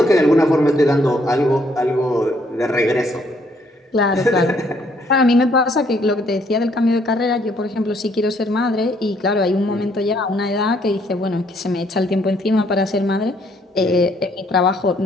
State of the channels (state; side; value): normal; both; correlation 0.68